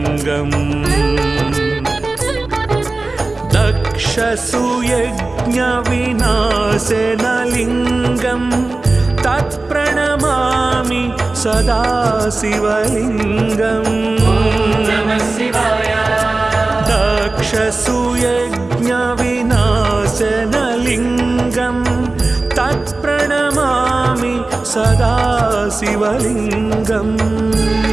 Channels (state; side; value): quieter; left; 3.3 dB